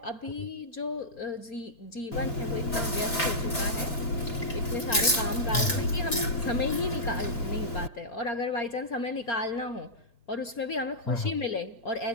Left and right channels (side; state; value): right; late; 2.3 ms